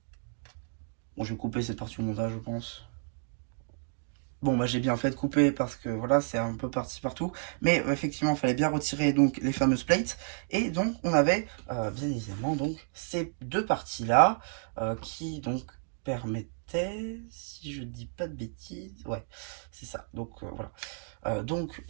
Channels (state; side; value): silent; left; 57 dB below the other